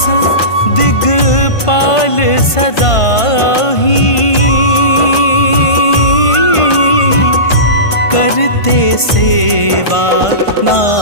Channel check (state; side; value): late; right; 1.5 ms